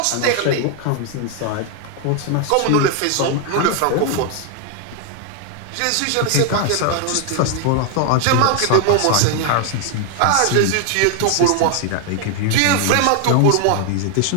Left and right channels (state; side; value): different; both; correlation 0.01